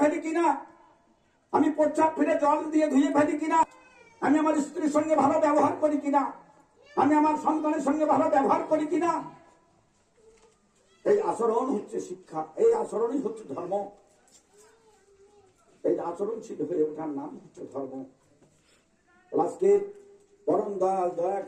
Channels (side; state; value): both; identical; correlation 1.00